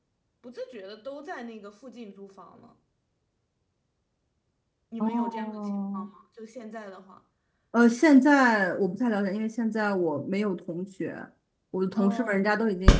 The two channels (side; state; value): both; identical; correlation 1.00